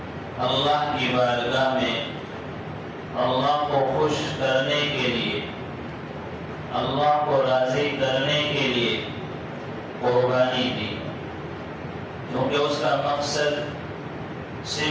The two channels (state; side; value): identical; both; correlation 1.00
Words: اللہ کی بارگاہ میں اللہ کو خوش کرنے کے لیے، اللہ کو راضی کرنے کے لیے قربانی دی، کیونکہ اس کا مقصد